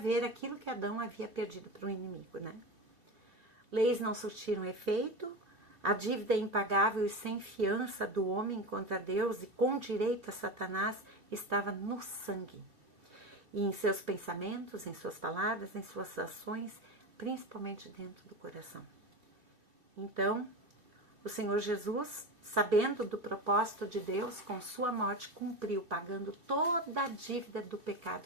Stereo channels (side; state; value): left; late; 2.1 ms